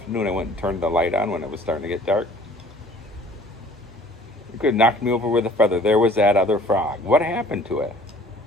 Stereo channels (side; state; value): both; normal; correlation 0.52